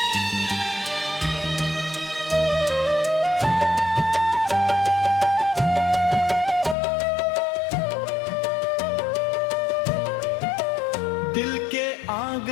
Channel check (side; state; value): right; drops out; at 6.8 s